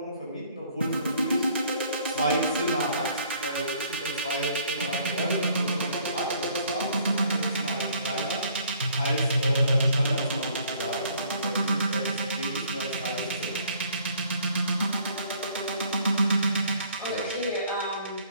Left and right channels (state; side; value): inverted; both; correlation -0.60